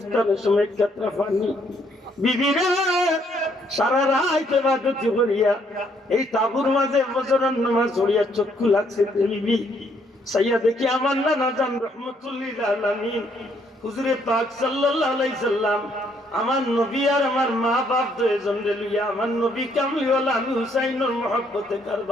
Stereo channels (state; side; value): normal; both; correlation 0.69